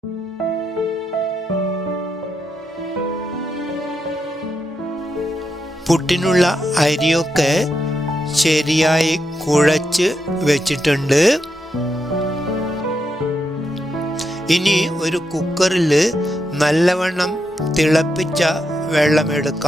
പുട്ടിനുള്ള അരിയൊക്കെ ശരിയായി കുഴച്ച് വെച്ചിട്ടുണ്ട്. ഇനി ഒരു കുക്കറിൽ നല്ലവണ്ണം തിളപ്പിച്ച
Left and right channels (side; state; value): both; normal; correlation 0.83